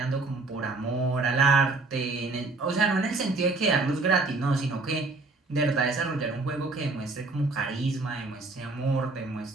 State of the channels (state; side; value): quieter; left; 3.5 dB